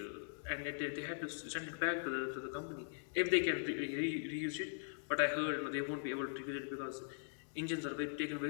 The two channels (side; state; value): right; silent; digital silence